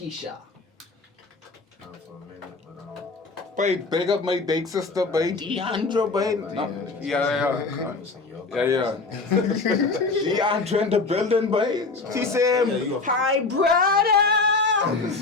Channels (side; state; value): right; quieter; 3.8 dB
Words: Babe, big up my big sister, babe. Deandra, babe. No, yeah. Deandra in the building, babe. She said, hi, brother.